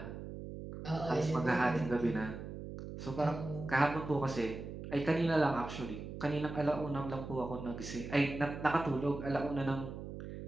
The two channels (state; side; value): noise; right; hum, 9 dB below the sound